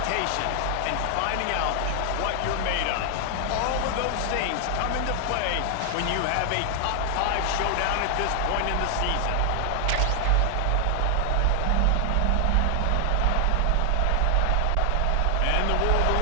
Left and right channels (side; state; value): both; different; correlation 0.00